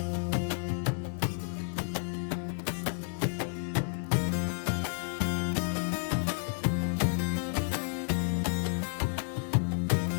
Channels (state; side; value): silent; right; digital silence